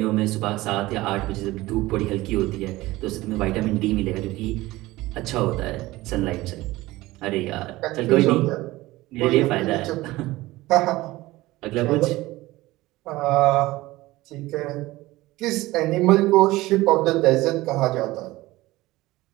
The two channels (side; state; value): left; quieter; 18.7 dB